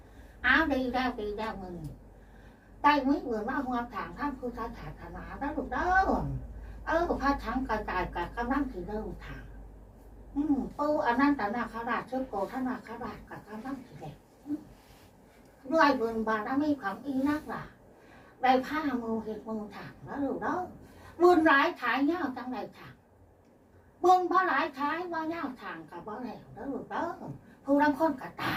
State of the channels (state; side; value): identical; both; correlation 1.00